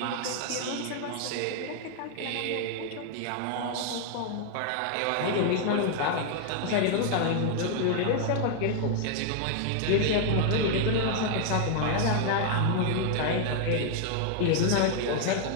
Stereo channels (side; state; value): both; different; correlation 0.00